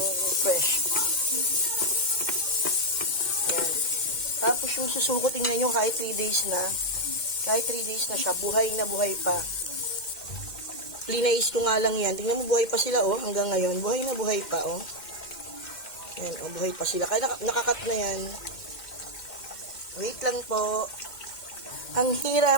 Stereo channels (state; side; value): late; right; 2.1 ms